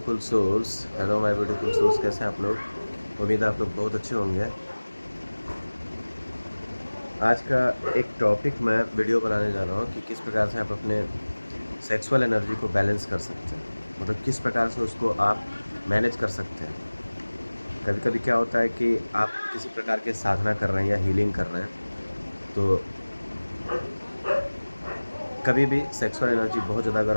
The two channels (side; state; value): both; inverted; correlation -1.00